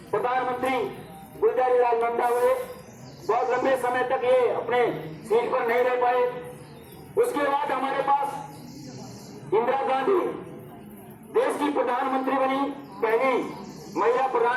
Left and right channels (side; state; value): both; identical; correlation 1.00